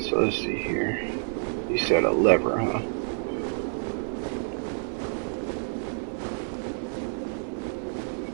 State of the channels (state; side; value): silent; left; digital silence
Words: let's see here. You said a lever, huh?